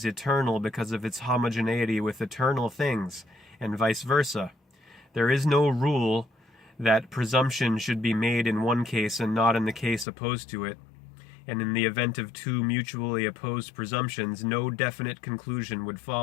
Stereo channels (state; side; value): drops out; right; at 10.1 s